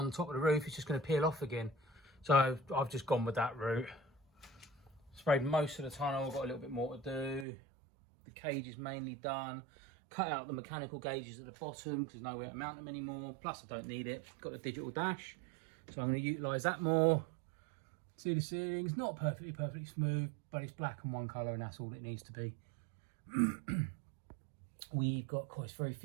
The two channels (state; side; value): drops out; left; at 7.5 s